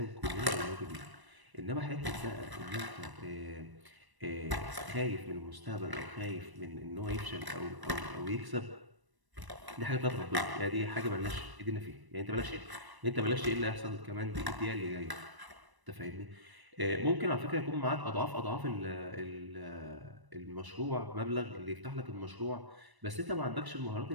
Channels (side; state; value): left; late; 1.0 ms